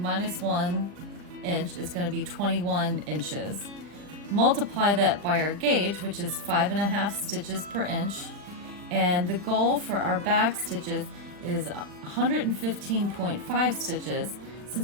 1 inch is going to be 21 inches. Multiply that by our gauge, which is 5.5 stitches per inch, and the goal for our back stitches is 115.5 stitches.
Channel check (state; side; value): late; left; 40 ms